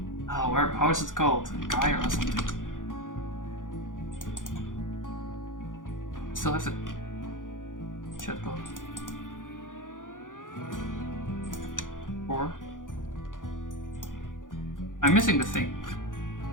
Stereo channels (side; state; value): right; late; 0.88 ms